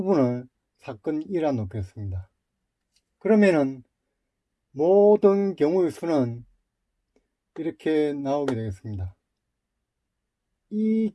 사건 E라 놓겠습니다. 그러면은 모든 경우의 수는 이렇게 나오게 되겠습니다. 이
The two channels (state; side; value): identical; both; correlation 1.00